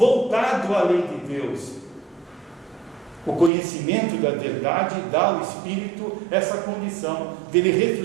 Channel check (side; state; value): left; drops out; at 3.5 s